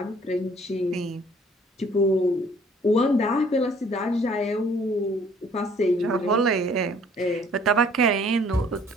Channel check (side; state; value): both; normal; correlation 0.57